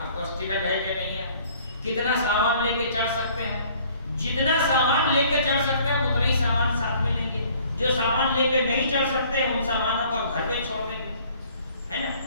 کو ٹکٹ ہے کہ نہیں ہے, کتنا سامان لے کے چڑھ سکتے ہیں. جتنا سامان لے کے چڑھ سکتے ہیں اتنا ہی سامان ساتھ میں لیں گے. جو سامان لے کے نہیں چڑھ سکتے ان سامانوں کو گھر پہ چھوڑ دیں گے, ہے نا.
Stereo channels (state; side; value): inverted; both; correlation -0.56